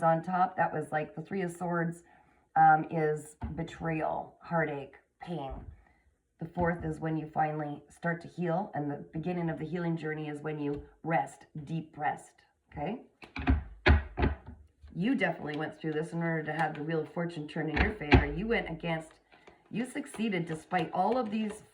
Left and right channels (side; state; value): both; identical; correlation 1.00